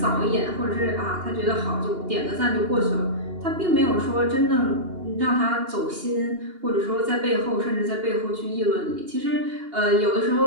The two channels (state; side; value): late; left; 2.8 ms